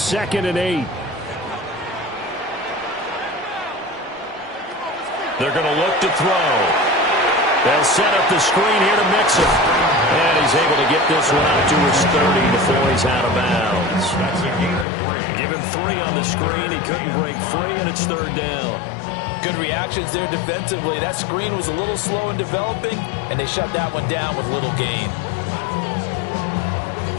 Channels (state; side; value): drops out; right; at 14.9 s